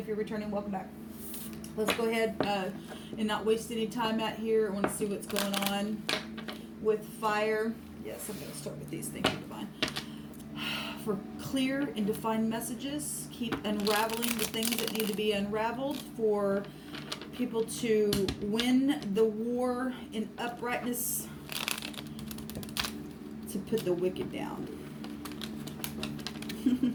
you're returning, welcome back. Let's go ahead and not waste any time out here. I want to see what's going on with fire. Yes, I'm going to start with these. Thank you, Divine. For clear and defined messages, keep unraveling the things that need to be unraveled. For people to win the war in uprightness, to put the wicked down.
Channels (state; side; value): identical; both; correlation 1.00